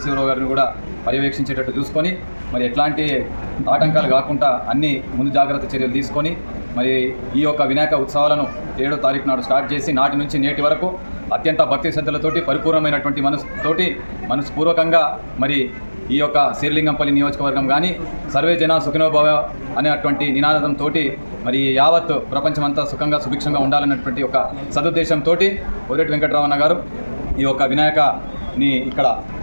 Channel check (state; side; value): inverted; both; correlation -1.00